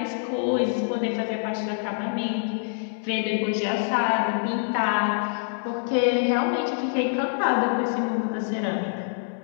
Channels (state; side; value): silent; right; digital silence